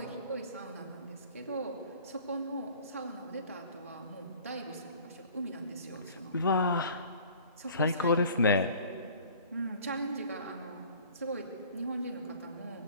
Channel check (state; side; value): inverted; both; correlation -0.49